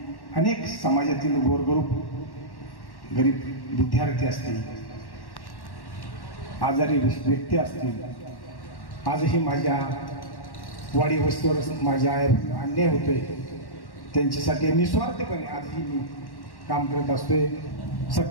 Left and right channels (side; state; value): right; late; 1.1 ms